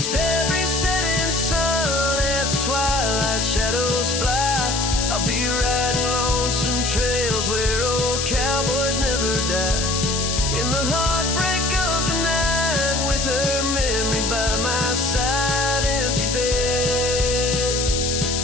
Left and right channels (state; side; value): noise; left; hiss, 1 dB below the sound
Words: every setting sun as the twilight shadows fly, I'll be riding lonesome trails where old cowboys never die. In the heartbreak of the night, with her memory by my side, empty bed